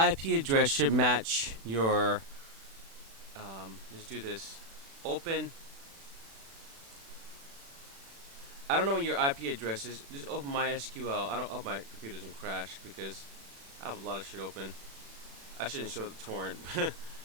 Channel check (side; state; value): left; late; 36 ms